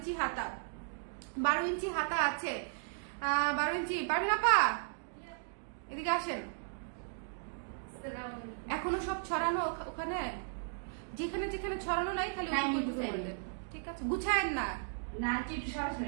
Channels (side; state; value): left; silent; digital silence